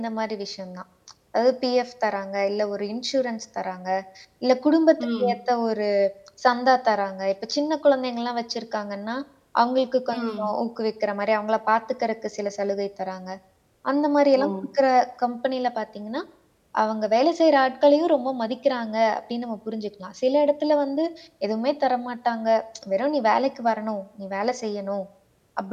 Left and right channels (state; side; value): identical; both; correlation 1.00